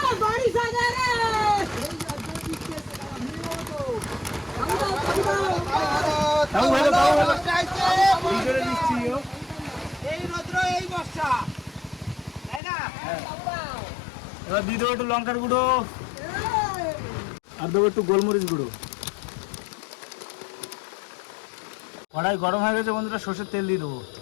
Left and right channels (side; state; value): right; drops out; at 12.6 s